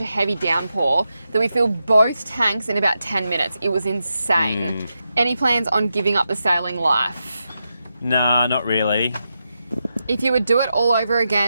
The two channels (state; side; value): inverted; both; correlation -0.87